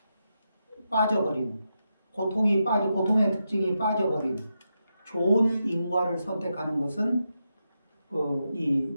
빠져버린, 고통의 특징이 빠져버린 좋은 인과를 선택하는 것은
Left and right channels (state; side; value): inverted; both; correlation -0.86